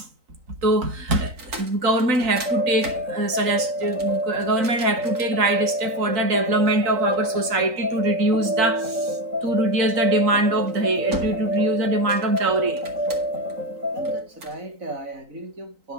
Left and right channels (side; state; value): left; late; 3.9 ms